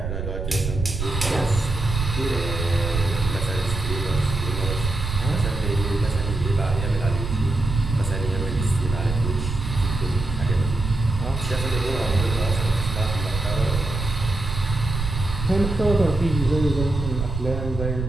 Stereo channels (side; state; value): right; noise; rumble, 4 dB below the sound